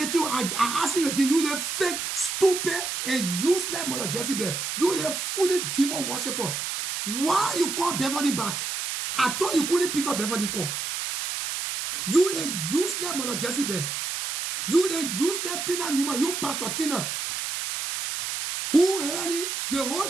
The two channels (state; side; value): noise; right; hiss, 3 dB below the sound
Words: you, I ask you again, you the fake, stupid, and useless Mother Jezebel. You the foolish demon worshiper. Why you call Beverly back? I thought you couldn't pick up Beverly call. You the useless Mother Jezebel. You the useless Tina Newman. You Pastor Tina. Who really, the